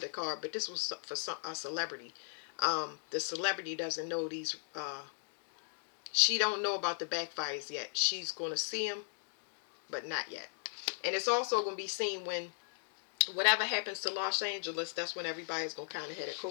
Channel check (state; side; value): silent; right; digital silence